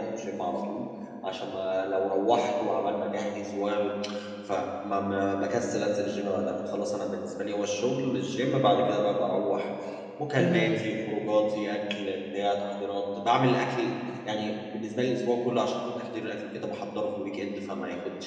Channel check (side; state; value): both; identical; correlation 1.00